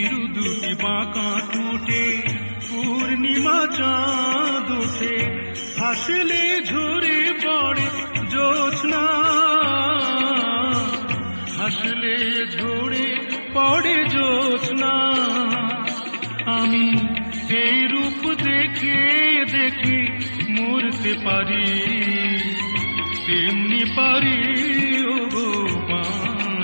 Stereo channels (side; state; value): both; inverted; correlation -1.00